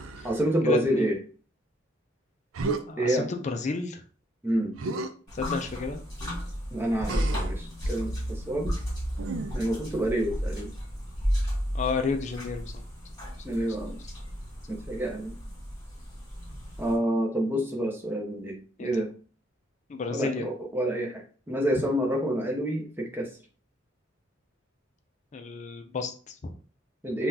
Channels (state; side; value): normal; both; correlation 0.71